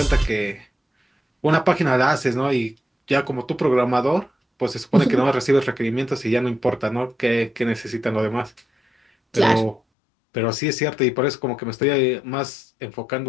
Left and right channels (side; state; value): right; drops out; at 9.8 s